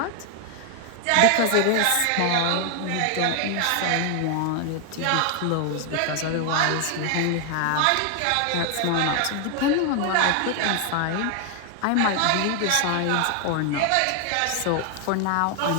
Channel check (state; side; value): different; both; correlation 0.00